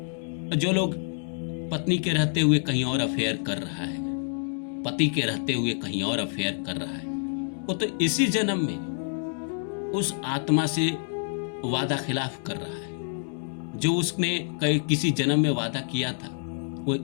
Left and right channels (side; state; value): right; silent; digital silence